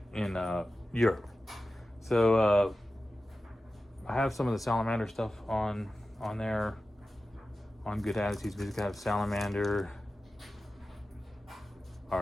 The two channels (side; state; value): both; normal; correlation 0.94